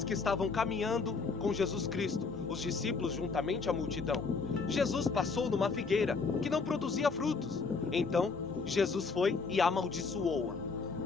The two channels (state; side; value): quieter; right; 4.6 dB